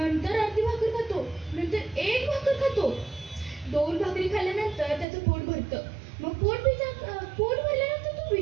अर्धी भाकर खातो, नंतर एक भाकर खातो. 2 भाकरी खाल्ल्यानंतर त्याचं पोट भरतं. मग पोट भरल्यानंतर तो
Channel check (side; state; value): left; drops out; at 5.1 s